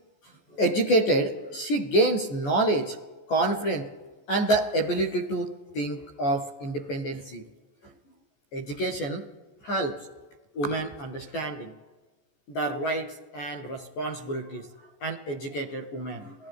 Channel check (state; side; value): late; right; 14 ms